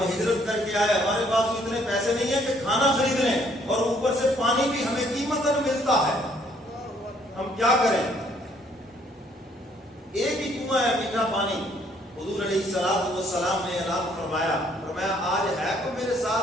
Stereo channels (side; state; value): both; normal; correlation 0.65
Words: ہجرت کر کے آئے، ہمارے پاس اتنے پیسے نہیں ہیں کہ کھانا خرید لیں اور اوپر سے پانی بھی ہمیں قیمتاً ملتا ہے، ہم کیا کریں؟ ایک ہی کنواں ہے میٹھا پانی۔ حضور علیہ الصلوۃ والسلام نے اعلان فرمایا آج ہے تو میرے